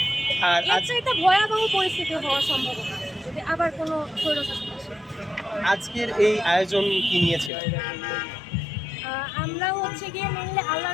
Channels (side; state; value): right; drops out; at 7.5 s